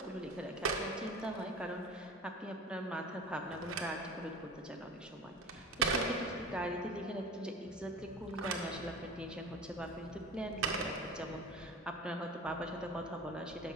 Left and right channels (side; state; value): both; normal; correlation 0.35